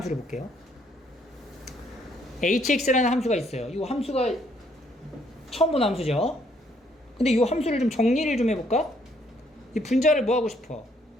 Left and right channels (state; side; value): normal; both; correlation 0.68